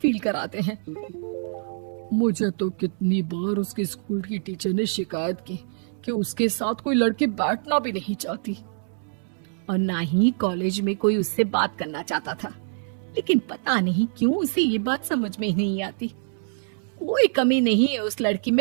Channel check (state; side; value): silent; left; 62 dB below the other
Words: कराते हैं। मुझे तो कितनी बार उसके स्कूल की टीचर ने शिकायत की कि उसके साथ कोई लड़की बैठना भी नहीं चाहती, और ना ही कॉलेज में कोई उससे बात करना चाहता था। लेकिन पता नहीं क्यों उसे ये बात समझ में ही नहीं आती। कोई कमी नहीं है उस लड़की